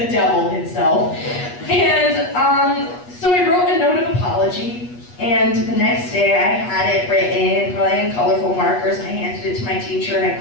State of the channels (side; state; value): right; late; 8.3 ms